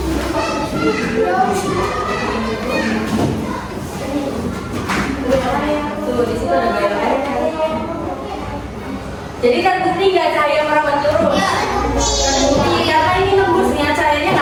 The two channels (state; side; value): identical; both; correlation 1.00